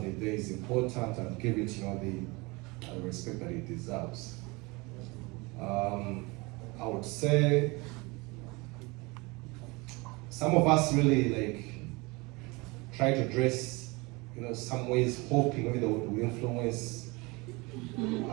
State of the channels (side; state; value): left; quieter; 25.5 dB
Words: the day is important and give it the respect that it deserves. I would say some of us really try to dress, some ways hoping maybe that will influence